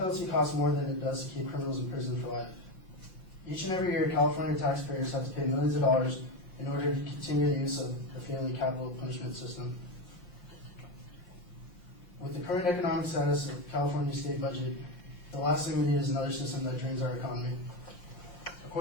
costs more than it does to keep criminals in prison for life. Each and every year, California taxpayers have to pay millions of dollars in order to continue the use of the failing capital punishment system. With the current economic status of California's state budget, the last thing we need is another system that drains our economy.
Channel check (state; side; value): late; right; 5.6 ms